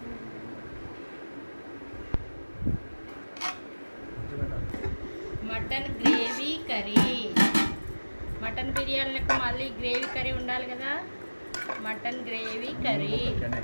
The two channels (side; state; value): both; inverted; correlation -1.00